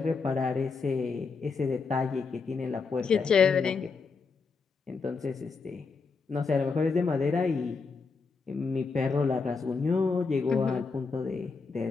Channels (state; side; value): quieter; right; 4.7 dB